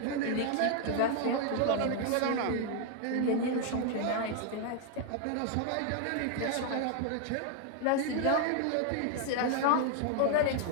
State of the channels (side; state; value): both; different; correlation 0.00